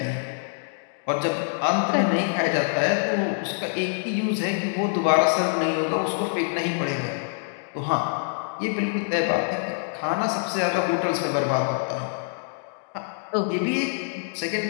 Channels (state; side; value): silent; right; digital silence